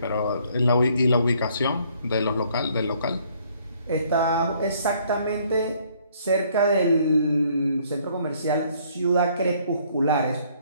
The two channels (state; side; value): inverted; both; correlation -0.63